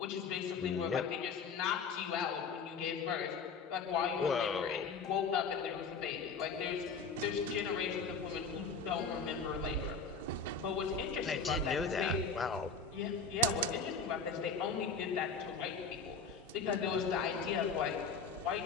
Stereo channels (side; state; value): right; quieter; 4.9 dB